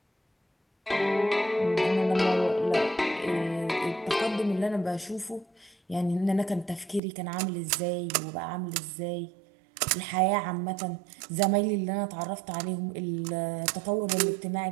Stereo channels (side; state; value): left; drops out; at 7.0 s